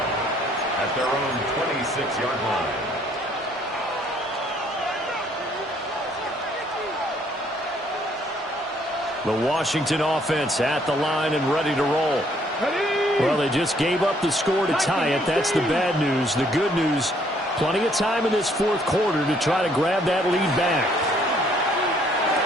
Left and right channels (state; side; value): normal; both; correlation 0.65